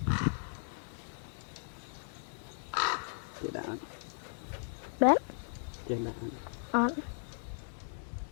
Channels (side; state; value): right; silent; 53 dB below the other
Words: Cái đã. Đấy. Trên đã. Ăn.